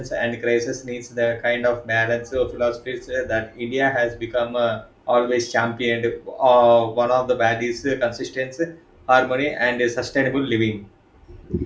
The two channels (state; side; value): identical; both; correlation 1.00